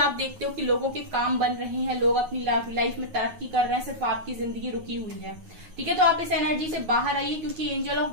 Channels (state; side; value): late; left; 9.5 ms